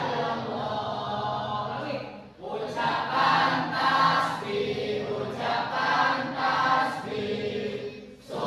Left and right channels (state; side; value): identical; both; correlation 1.00